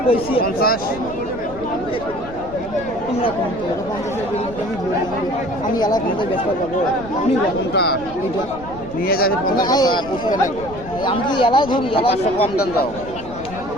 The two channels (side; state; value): left; noise; rumble, 15 dB below the sound